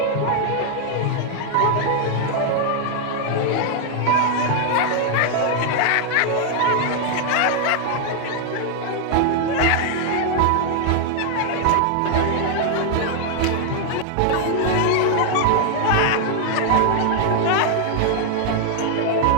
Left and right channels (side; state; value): both; different; correlation 0.00